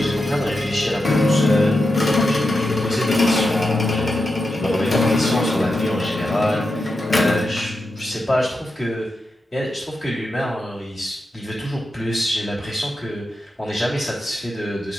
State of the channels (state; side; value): normal; both; correlation 0.89